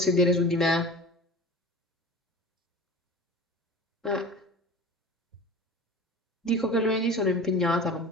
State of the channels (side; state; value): both; normal; correlation 0.37